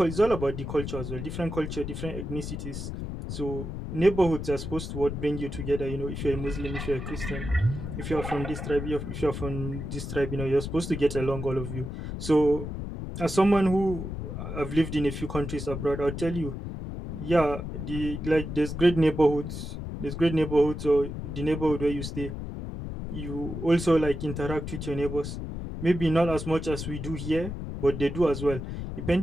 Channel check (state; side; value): noise; left; rumble, 6 dB below the sound